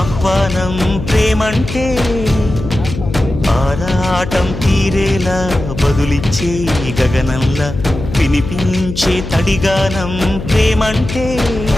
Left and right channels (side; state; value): left; noise; hum, 8 dB below the sound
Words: ప్రేమంటే ఆరాటం తీరేలా బదులిచ్చే గగనంలా వినిపించే తడిగానం ప్రేమంటే